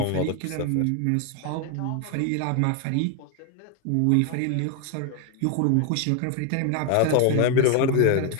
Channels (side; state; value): both; different; correlation 0.00